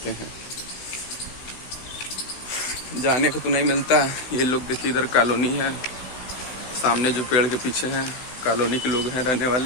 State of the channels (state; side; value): late; right; 16 ms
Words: हैं। जाने को तो नहीं मिलता। ये लोग देखिए इधर कॉलोनी है, सामने जो पेड़ के पीछे हैं कॉलोनी के लोग हैं रहने